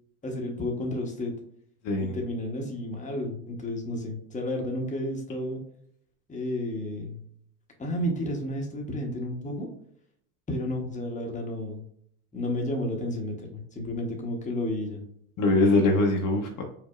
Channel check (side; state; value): both; normal; correlation 0.30